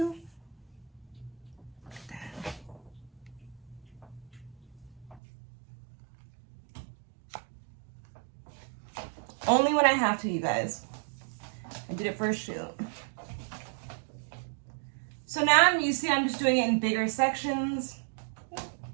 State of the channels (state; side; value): drops out; left; at 5.2 s